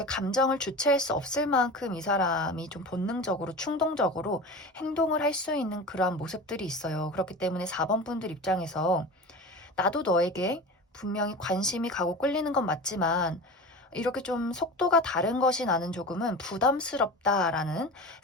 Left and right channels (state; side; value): normal; both; correlation 0.31